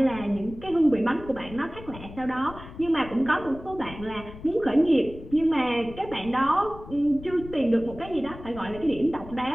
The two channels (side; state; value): left; noise; rumble, 15 dB below the sound